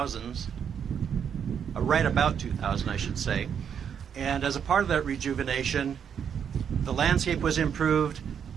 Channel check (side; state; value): left; quieter; 7.9 dB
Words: right about 2000, I should say. And as a part of that rejuvenation, the landscape was improved.